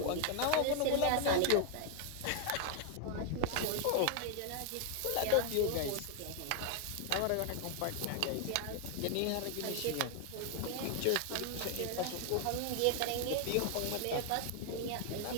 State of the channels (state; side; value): different; both; correlation 0.00